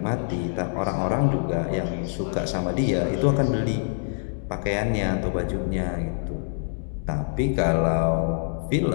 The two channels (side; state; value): right; silent; digital silence